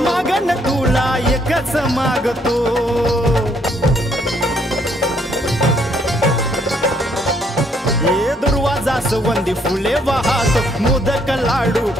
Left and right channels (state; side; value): normal; both; correlation 0.69